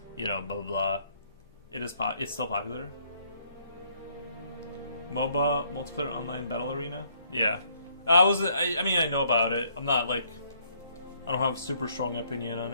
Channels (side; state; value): both; inverted; correlation -0.67